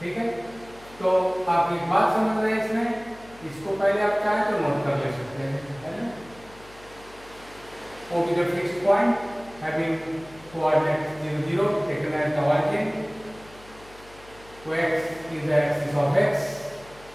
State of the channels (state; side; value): noise; left; hum, 23 dB below the sound